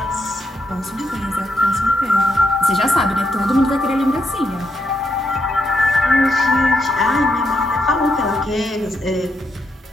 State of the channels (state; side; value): normal; both; correlation 0.80